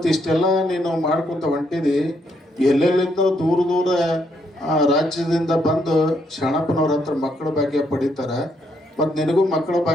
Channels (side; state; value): both; normal; correlation 0.74